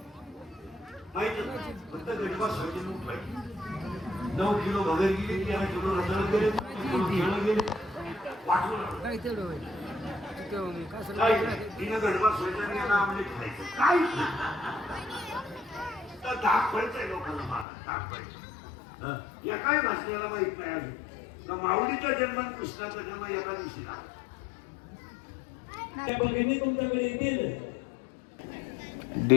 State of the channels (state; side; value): drops out; right; at 17.7 s